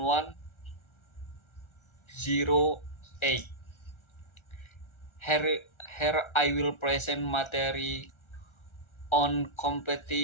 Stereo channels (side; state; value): right; late; 1.3 ms